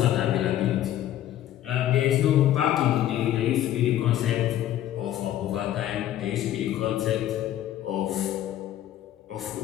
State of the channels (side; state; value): right; quieter; 12.4 dB